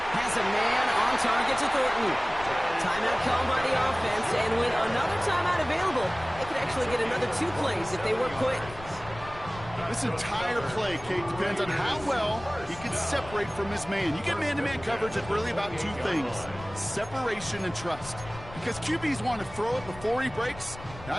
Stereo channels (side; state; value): left; noise; rumble, 16 dB below the sound